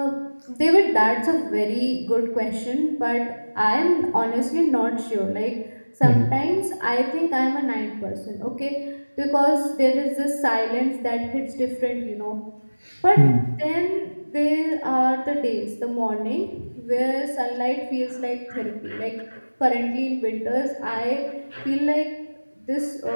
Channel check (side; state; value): both; inverted; correlation -1.00